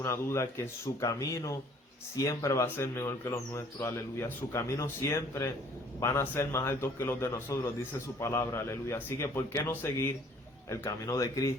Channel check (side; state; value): both; normal; correlation 0.57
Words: duda que su camino siempre va a ser mejor que los nuestros, aleluya. Su camino siempre van a ser más altos que los de nosotros, dice su palabra, aleluya. Así que, ¿por qué no seguir el camino de